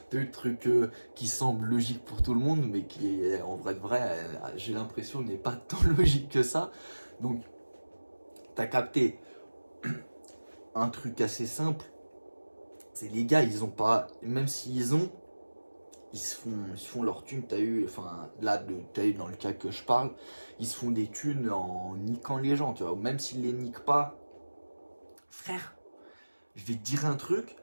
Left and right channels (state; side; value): inverted; both; correlation -1.00